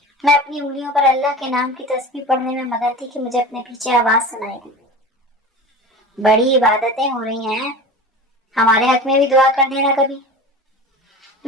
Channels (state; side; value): normal; both; correlation 0.34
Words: मैं अपनी उंगलियों पर अल्लाह के नाम की तस्बीह पढ़ने में मगन थी कि मुझे अपने पीछे आवाज सुनाई दी, बड़ी इबादतें हो रही हैं, हमारे हक में भी दुआ कर देना कभी।